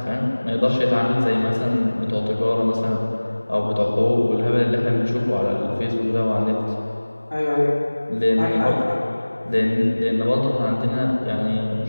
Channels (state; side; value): inverted; both; correlation -1.00